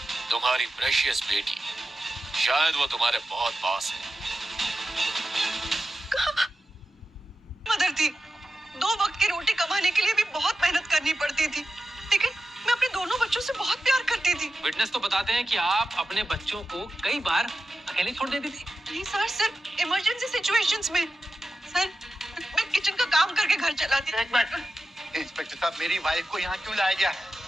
तुम्हारी प्रेशियस बेटी, शायद वो तुम्हारे बहुत पास है। मदर थी, 2 वक्त की रोटी कमाने के लिए भी बहुत मेहनत करनी पड़ती थी, लेकिन मैं अपने दोनों बच्चों से बहुत प्यार करती थी। विटनेस तो बताते हैं कि आप अपने बच्चों को कई बार अकेले छोड़ देती थी। नहीं सर, सिर्फ इमरजेंसी सिचुएशंस में। सर, मैं किचन का काम करके घर चलाती थी। एक मिनट, इंस्पेक्टर साहब, मेरी वाइफ को यहाँ क्यों लाया गया है?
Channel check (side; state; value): both; normal; correlation 0.92